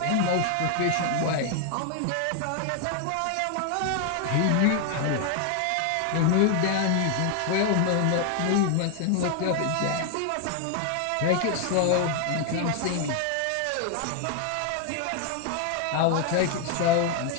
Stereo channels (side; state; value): both; different; correlation 0.00